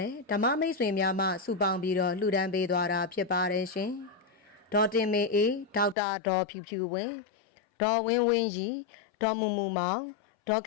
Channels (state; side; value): drops out; right; at 6.0 s